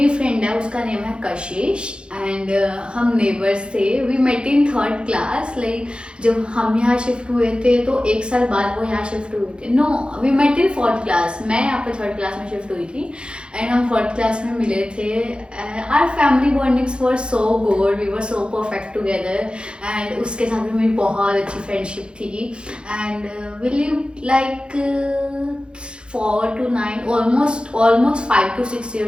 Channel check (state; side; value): late; left; 0.054 ms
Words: फ्रेंड है उसका नेम है कशिश, एंड हम नेबर्स थे। We met in third class, like जब हम यहाँ शिफ्ट हुए थे तो एक साल बाद वो यहाँ शिफ्ट हुए थे। No, we met in fourth class, मैं यहाँ पे थर्ड क्लास में शिफ्ट हुई थी, एंड हम फोर्थ क्लास में मिले थे। Our family bondings were so good, we were so perfect together, and उसके साथ भी मेरी बहुत अच्छी फ्रेंडशिप थी। And we live like 4 to 9, almost 5 to 6